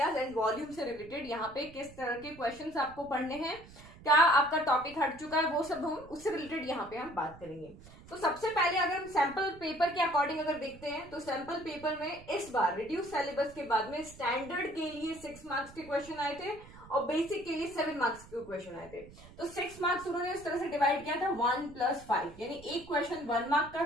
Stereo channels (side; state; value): right; noise; rumble, 20 dB below the sound